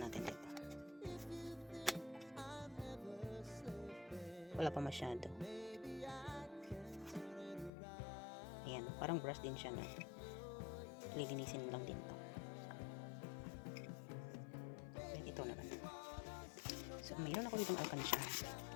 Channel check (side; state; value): right; drops out; at 7.7 s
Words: dito. If you think I'm never sleeping, Wala pa masyado. maybe I can turn it around. Ayan, parang brush din siya na. Lilinisin lang din to. Ayan, ito naman. So, mayroon ako ditong alkansya.